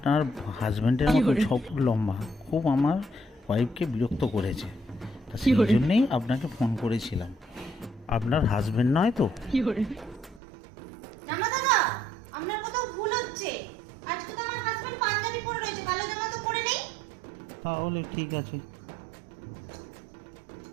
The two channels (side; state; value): left; drops out; at 10.4 s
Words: হাজব্যান্ডের মতো 6 ফুট লম্বা খুব আমার ওয়াইফকে বিরক্ত করেছে। তা সেই জন্যেই আপনাকে ফোন করেছিলাম। আপনার হাজব্যান্ড নয় তো? না না দাদা, আপনার কোথাও ভুল হচ্ছে। আজকে তো আমার হাজবেন্ড পাঞ্জাবি পরে রয়েছে, কালো জামা তো পরে নেই। তাহলে ঠিক আছে।